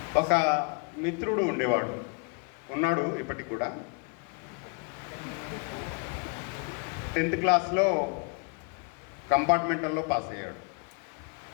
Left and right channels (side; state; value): right; quieter; 34.9 dB